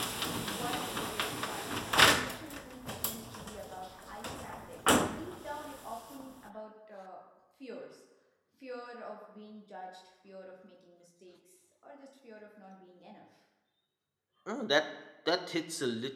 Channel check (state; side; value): identical; both; correlation 1.00